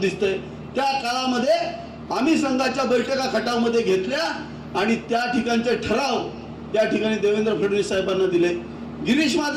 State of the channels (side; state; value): both; identical; correlation 1.00